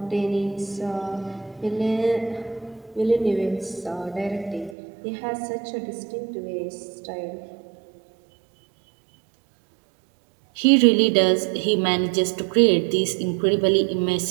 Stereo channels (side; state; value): left; drops out; at 4.8 s